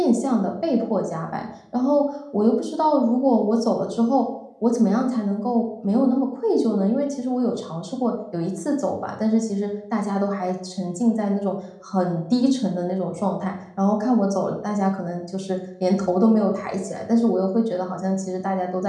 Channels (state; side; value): identical; both; correlation 1.00